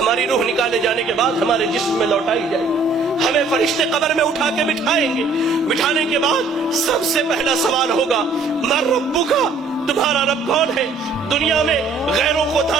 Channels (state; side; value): quieter; left; 3.9 dB